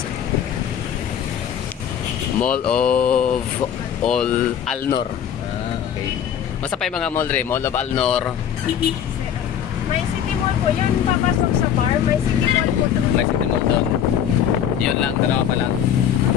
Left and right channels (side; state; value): right; quieter; 9.2 dB